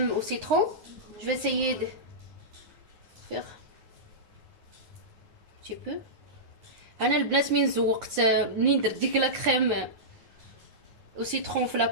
au citron, je vais essayer de faire un petit peu. انا البنات من زوقت منين درت ديك لا كريم او سيترون في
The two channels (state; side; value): late; left; 9.7 ms